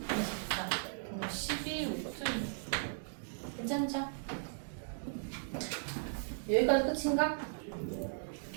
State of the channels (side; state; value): left; silent; digital silence